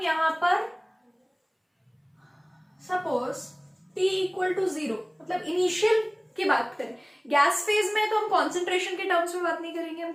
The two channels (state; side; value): identical; both; correlation 1.00